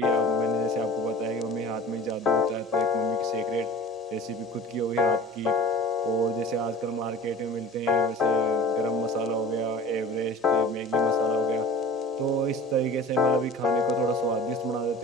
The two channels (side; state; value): both; normal; correlation 0.41